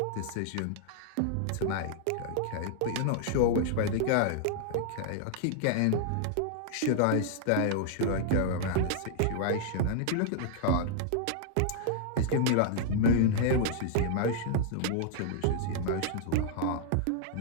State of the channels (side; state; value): both; different; correlation -0.01